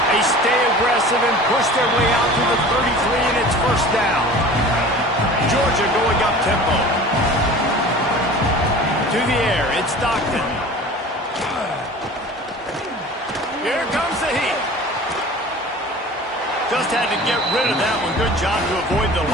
They stay aggressive and push their way out to the 33, and it's first down. Georgia going up tempo. To the air, it's Stockton. Here comes the heat. Just had to get rid of that one. Good job to avoid the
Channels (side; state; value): both; normal; correlation 0.41